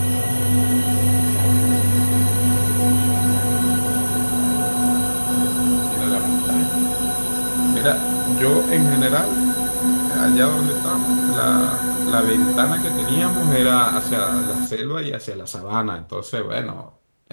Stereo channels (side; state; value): both; inverted; correlation -1.00